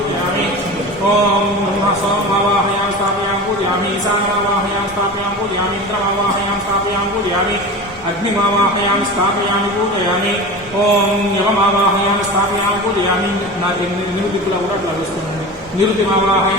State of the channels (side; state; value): both; normal; correlation 0.31